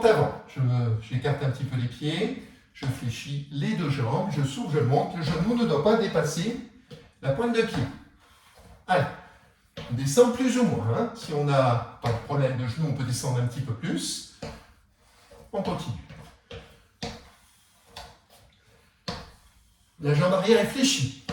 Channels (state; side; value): identical; both; correlation 1.00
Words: avant. J'écarte un petit peu les pieds. Je fléchis les deux jambes. Je souffle, je monte. Le genou ne doit pas dépasser la pointe de pied. Allez. On descend plus ou moins. Hein. Si on n'a pas de problème de genou, on peut descendre un petit peu plus. On continue. La jambe arrière est fléchie.